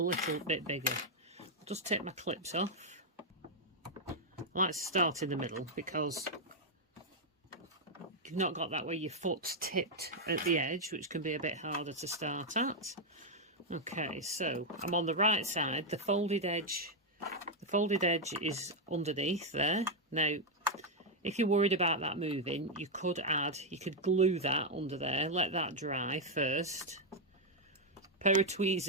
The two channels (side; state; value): both; normal; correlation 0.00